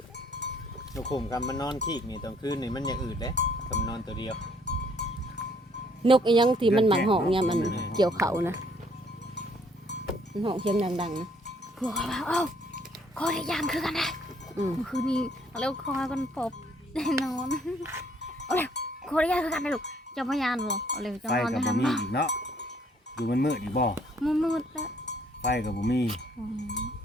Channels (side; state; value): both; normal; correlation 0.64